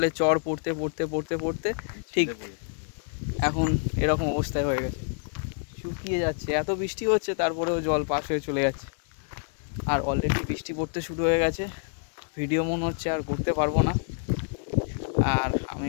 চর পড়তে পড়তে পড়তে পড়তে ঠিক এখন এরকম অবস্থায় হয়ে গেছে, শুকিয়ে যাচ্ছে। এত বৃষ্টি হচ্ছে তারপরেও জল পাস হয়ে চলে যাচ্ছে। আর অলরেডি বৃষ্টি পড়তে শুরু হয়ে গেছে, ভিডিও মনে হচ্ছে আর করতে পারবো না। আর আমি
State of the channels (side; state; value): right; silent; 60 dB below the other